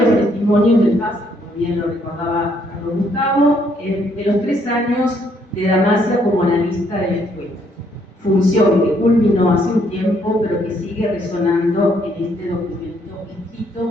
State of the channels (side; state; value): both; normal; correlation 0.69